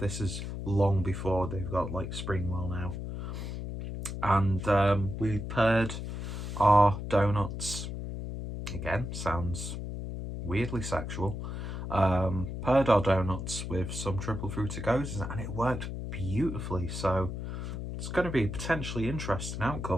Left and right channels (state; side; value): noise; left; hum, 6 dB below the sound